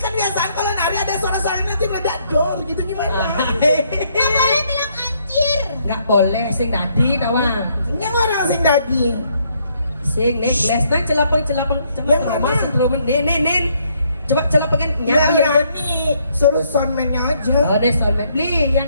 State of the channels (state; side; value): inverted; both; correlation -0.70